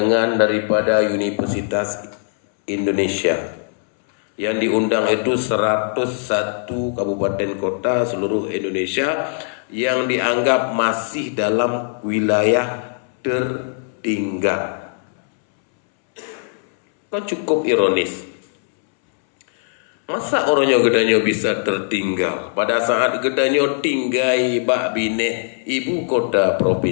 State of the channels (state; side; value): silent; right; 66 dB below the other